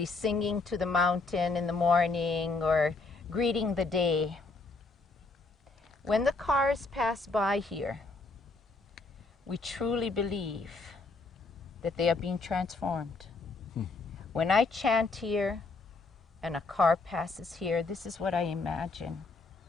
singing to the mountain in the morning or greeting the day. When the cars pass by here, we truly believe that they are being transformed. When I chant here and a car passes here, this is what I imagine.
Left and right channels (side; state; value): right; quieter; 3.7 dB